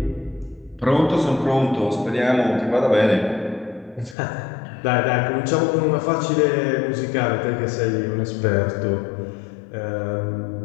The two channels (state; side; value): drops out; right; at 4.2 s